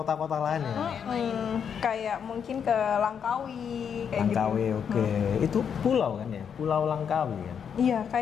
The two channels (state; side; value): quieter; right; 7.5 dB